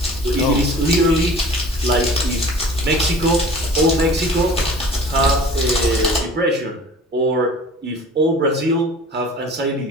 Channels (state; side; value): normal; both; correlation 0.44